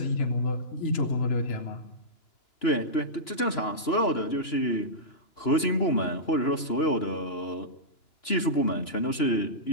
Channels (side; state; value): right; late; 2.9 ms